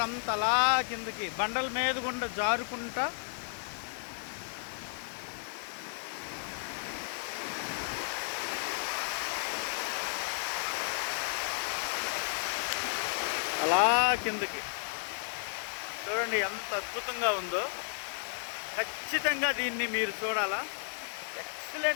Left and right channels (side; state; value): right; silent; 56 dB below the other